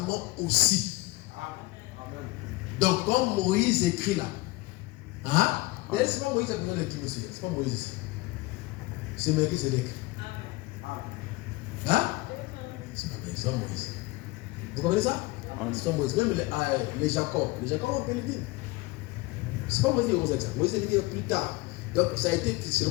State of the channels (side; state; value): right; quieter; 21.6 dB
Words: aussi. Donc, comme Moïse écrit là, mais c'est pas Moïse qui a besoin de dire aussi, c'est pas Moïse. C'est Melchisédek. C'est pas Moïse. Vous comprenez ça? C'est pas Moïse. Même les Jacob. Les Jacob ont payé le dîme. C'est pas Moïse qui a dit ça. Moïse a dit plus tard. Donc ça a été